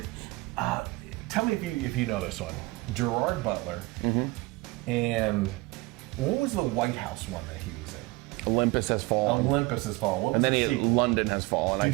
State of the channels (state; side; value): quieter; left; 22.6 dB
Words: tell me if you know this one. Gerard Butler and what was the White House one that he was in? Olympus Has Fallen. Olympus Has Fallen. What was and then the sequel? London Has Fallen.